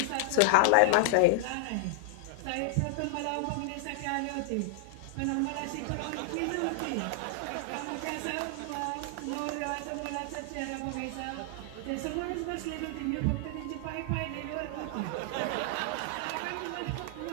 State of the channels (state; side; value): different; both; correlation 0.00